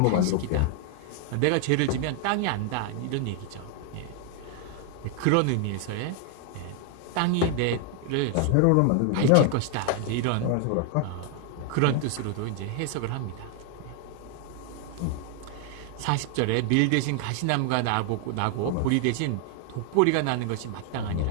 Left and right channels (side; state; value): both; different; correlation 0.00